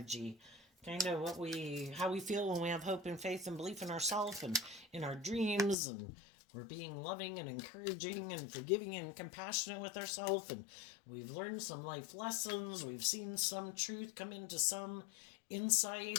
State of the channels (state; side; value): drops out; right; at 5.8 s